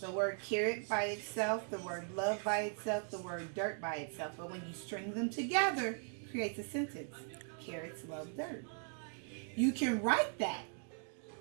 The word carrot by itself, the word love by itself, the word dirt by itself. But when you string them together, it creates a sentence. Carrots, love, dirt. You can write that.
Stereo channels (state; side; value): silent; left; 52 dB below the other